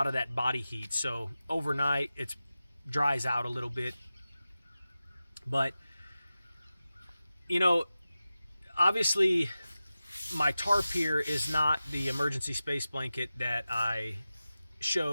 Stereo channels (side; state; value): both; inverted; correlation -0.95